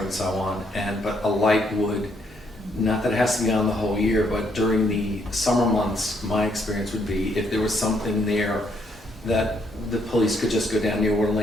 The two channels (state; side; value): normal; both; correlation 0.72